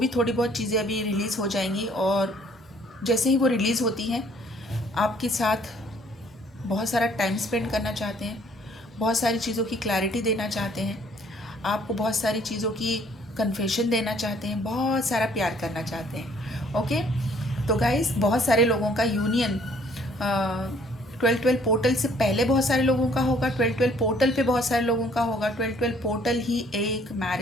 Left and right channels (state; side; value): normal; both; correlation 0.61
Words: थोड़ी बहुत चीज़ें अभी रिलीज़ हो जाएंगी और जैसे ही वो रिलीज़ होती हैं आपके साथ बहुत सारा टाइम स्पेंड करना चाहते हैं, बहुत सारी चीज़ों की क्लैरिटी देना चाहते हैं, आपको बहुत सारी चीज़ों की कन्फेशन देना चाहते हैं, बहुत सारा प्यार करना चाहते हैं। ओके, तो गाइस बहुत सारे लोगों का यूनियन 12-12 पोर्टल से पहले बहुत सारे लोगों का होगा, 12-12 पोर्टल पे बहुत सारे लोगों का होगा। 12-12 पोर्टल ही एक